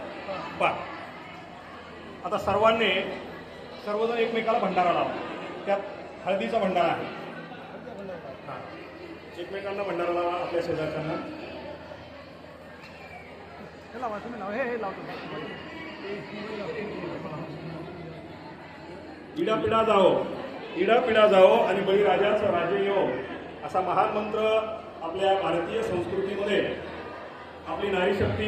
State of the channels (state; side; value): identical; both; correlation 1.00